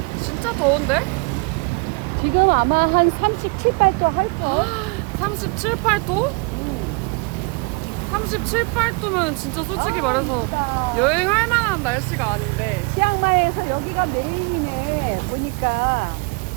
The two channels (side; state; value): left; quieter; 31.3 dB